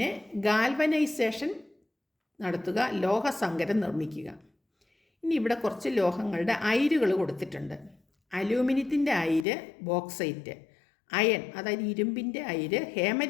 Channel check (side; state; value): right; drops out; at 9.5 s